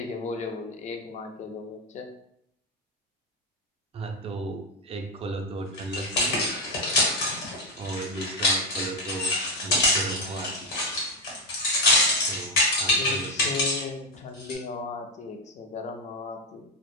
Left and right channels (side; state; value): both; normal; correlation 0.07